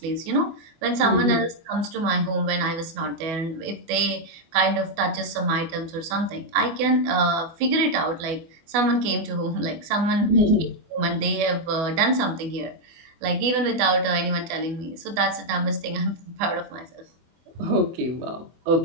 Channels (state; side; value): late; left; 24 ms